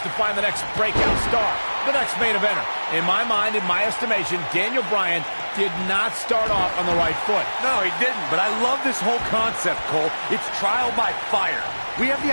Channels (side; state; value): both; inverted; correlation -1.00